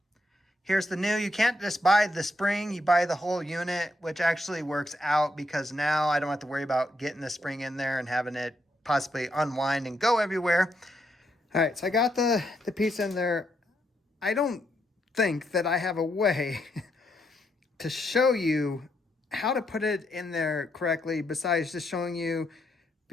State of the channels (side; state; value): both; normal; correlation 0.78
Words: here's the new. You can't just buy the spring, you buy the whole unit, which actually works out because now I don't have to worry about getting the spring in there and having it possibly unwind and go everywhere. All right, so I got the piece in there. I don't think that I have a way to show you how to put it in there correctly besides just showing you